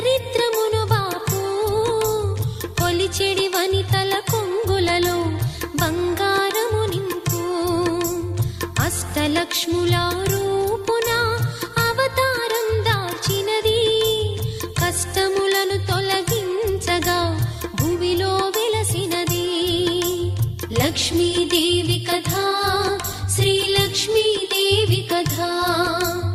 బాపు, కొలిచెడి వనితల కొంగులలో బంగారము నింపు. అష్టలక్ష్ముల రూపున అవతారం దాల్చినది, కష్టములను తొలగించగా భూమిలో వెలసినది. లక్ష్మీదేవి కథ, శ్రీ లక్ష్మీదేవి కథ,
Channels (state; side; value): identical; both; correlation 1.00